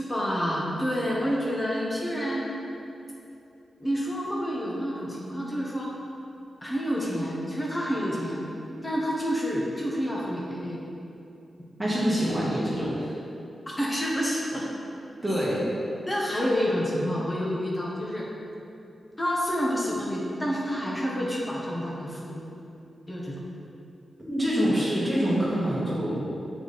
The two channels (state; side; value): normal; both; correlation 0.90